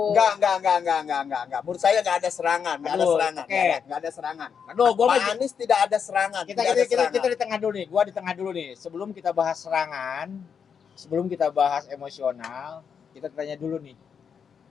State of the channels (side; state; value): right; quieter; 6.9 dB